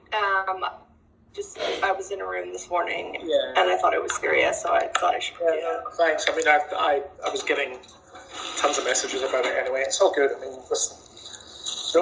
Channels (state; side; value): identical; both; correlation 1.00